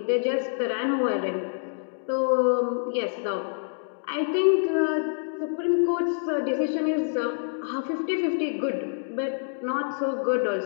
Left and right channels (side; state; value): right; silent; digital silence